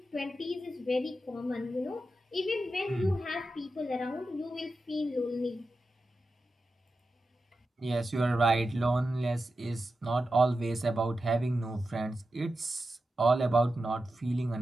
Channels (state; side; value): normal; both; correlation 0.90